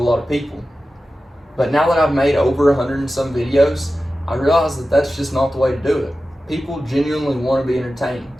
lot of people. But now that I've made over 100 and some videos, I realize that that's just not the way to do it. People genuinely want to be entertained.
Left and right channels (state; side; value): normal; both; correlation 0.94